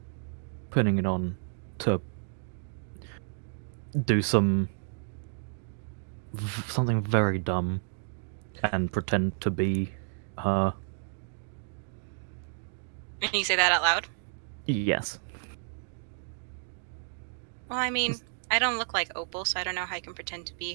putting it on to do something very dumb and pretend to be her. And you say that out loud? Yes. Well, I mean, I don't look like Opal, so I don't know how I can pretend to be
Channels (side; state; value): left; silent; 57 dB below the other